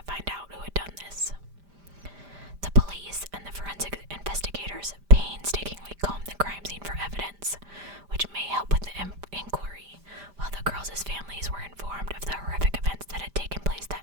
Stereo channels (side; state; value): left; late; 5.0 ms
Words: find out who had done this. The police and the forensic investigators painstakingly combed the crime scene for evidence, which may help with the inquiry, while the girls' families were informed of the horrific events that had taken place